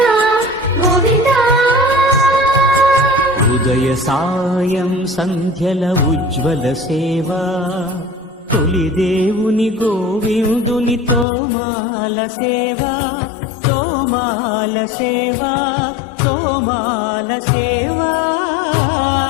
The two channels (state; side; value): drops out; right; at 11.2 s